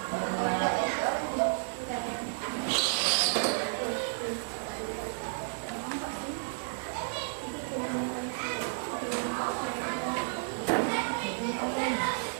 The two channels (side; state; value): left; silent; 56 dB below the other